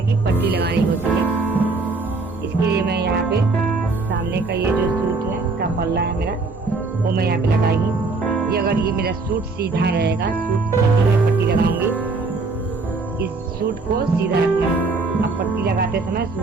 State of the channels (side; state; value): left; quieter; 3.7 dB